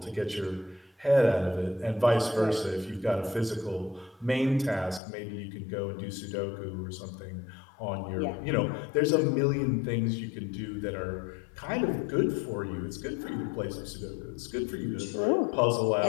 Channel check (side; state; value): right; drops out; at 5.0 s